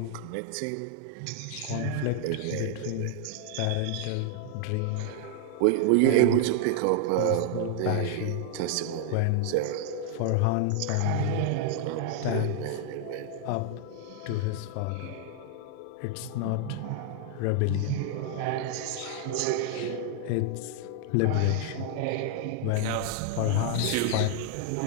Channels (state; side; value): different; both; correlation 0.00